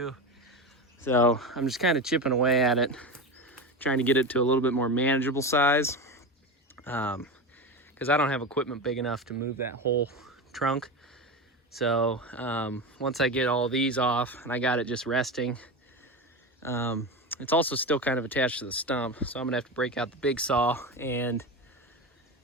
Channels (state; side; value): normal; both; correlation 0.22